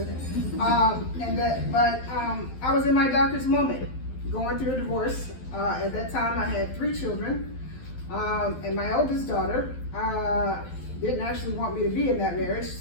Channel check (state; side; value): late; right; 12 ms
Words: But I was in my darkest moment, going through a divorce. At that time, I had 3 children, and my oldest daughter didn't actually want me to be in that marriage,